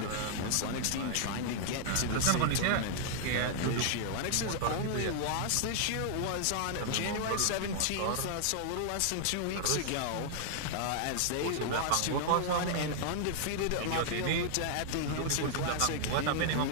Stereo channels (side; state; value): both; different; correlation 0.00